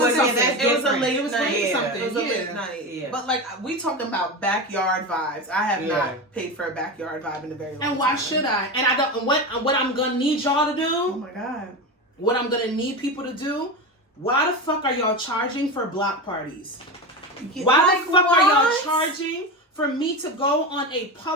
a late night. Something. It was a late night. Yeah. But like we talking about backyard vibes. I have not paid for a backyard vibe in a very long time. And why should I? And I don't. What I'm gonna need y'all to do? Oh my god. What I'm gonna need people to do? Why the fuck are y'all charging for block parties? Why the fuck are y'all charging for me to go on a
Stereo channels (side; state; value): both; normal; correlation 0.21